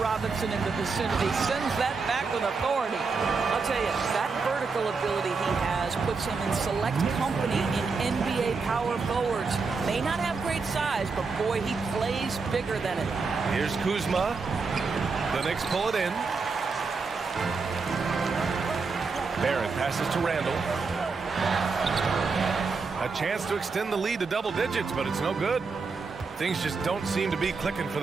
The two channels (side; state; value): left; quieter; 4.6 dB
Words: in the vicinity. Sends that back with authority. I'll tell you, that vertical ability he has puts him in select company in NBA power forwards. May not have great size, but boy, he plays bigger than it. Here's Kuzma. The Knicks pull it in. Barrett passes to Randall. A chance to extend the lead to double digits, but it's no good. Things just don't seem to be clicking for